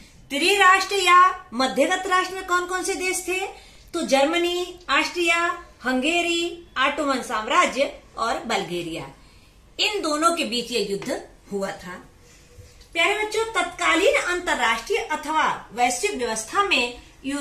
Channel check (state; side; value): identical; both; correlation 1.00